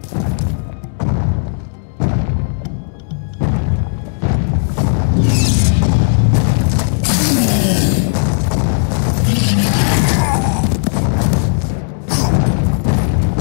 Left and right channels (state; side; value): silent; right; digital silence